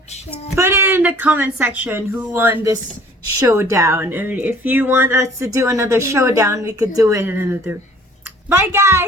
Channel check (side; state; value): both; normal; correlation 0.53